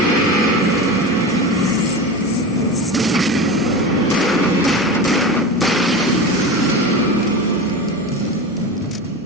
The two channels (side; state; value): both; normal; correlation 0.27